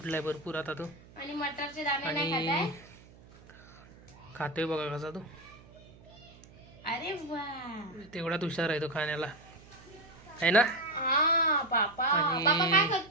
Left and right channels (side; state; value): right; noise; hum, 23 dB below the sound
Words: भरपूर आता तो. आणि मटरचे दाणे नाही आणि खाताय? खातोय बघा कसा तो. अरे वा, तेवढाच हुशार आहे तो खाण्याला, आहे ना? हा. पापा आणि पापा काय